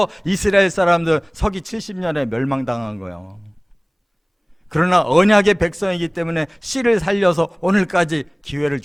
이스라엘 사람들 서기 70년에 멸망당한 거예요. 그러나 언약의 백성이기 때문에 씨를 살려서 오늘까지 기회를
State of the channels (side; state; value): both; identical; correlation 1.00